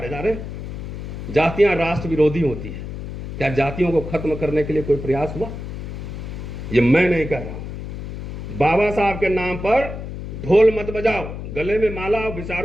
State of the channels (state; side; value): noise; left; hum, 8 dB below the sound